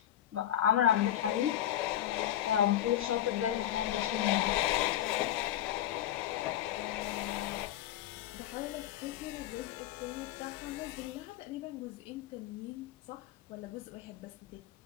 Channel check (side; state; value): right; quieter; 12.1 dB